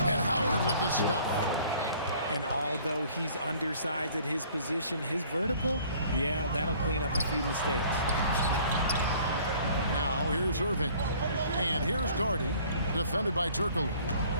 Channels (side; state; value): both; inverted; correlation -0.54